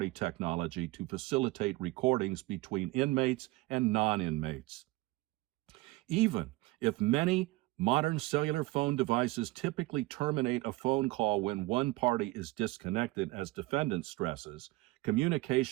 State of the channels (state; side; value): quieter; left; 21.0 dB